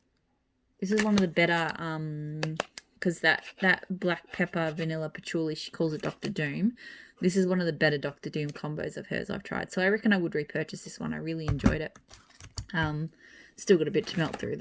This is one of the better, because that black pepper vanilla patchouli, she calls it Dr. Doom. This is one of the better Dr. Doom combos of hers I've tried. So I reckon I would repurchase this one. I really enjoyed it. Still got a bit to melt through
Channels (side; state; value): both; identical; correlation 1.00